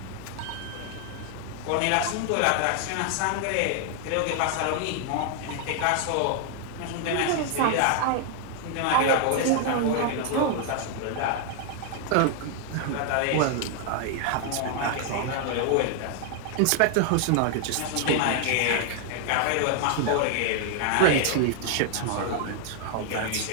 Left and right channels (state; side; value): different; both; correlation 0.00